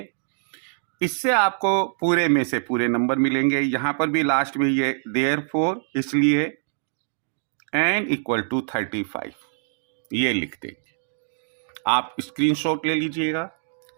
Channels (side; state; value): left; silent; digital silence